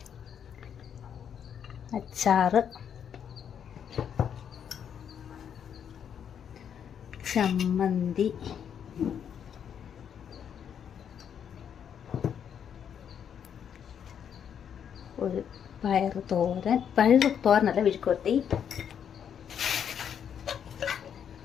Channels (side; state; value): right; quieter; 8.3 dB